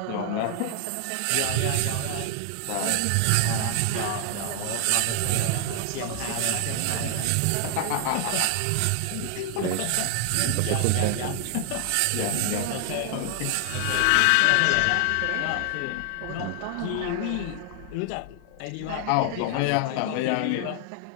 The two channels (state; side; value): different; both; correlation 0.00